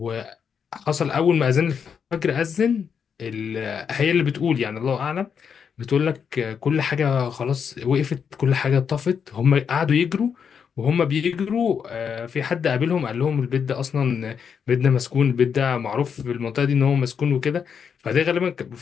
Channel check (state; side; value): quieter; right; 6.9 dB